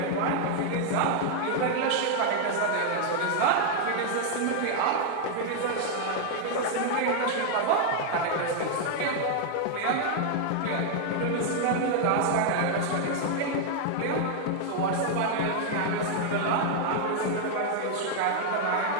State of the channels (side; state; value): both; different; correlation 0.00